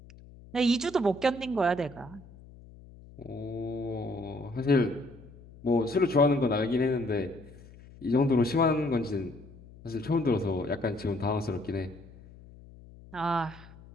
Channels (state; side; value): noise; left; hum, 20 dB below the sound